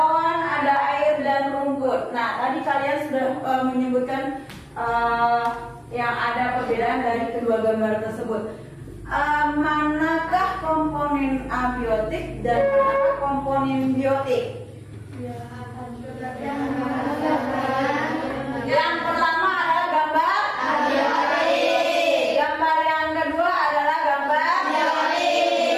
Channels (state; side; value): identical; both; correlation 1.00